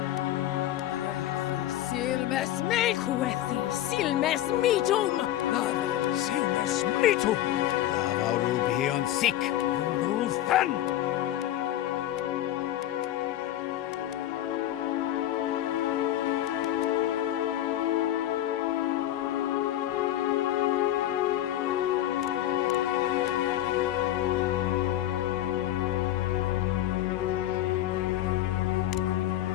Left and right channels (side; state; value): right; quieter; 13.2 dB